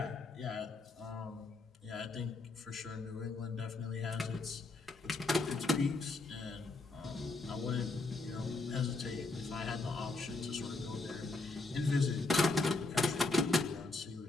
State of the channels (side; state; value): right; quieter; 3.4 dB